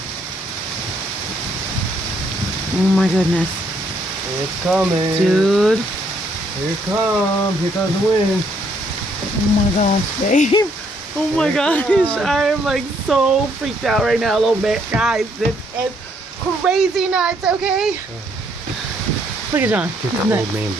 Oh my goodness. It's coming. Dude. Here it comes. Here comes the wind. Oh my gosh, babe. Oh my gosh. I am like so freaked out right now a little bit. Guys, this is crazy nuts, okay? Look at John. Get the old man,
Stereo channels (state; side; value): normal; both; correlation 0.70